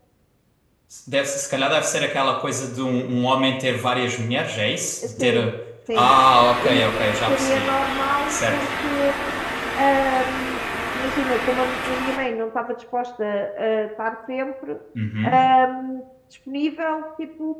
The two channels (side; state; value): both; identical; correlation 1.00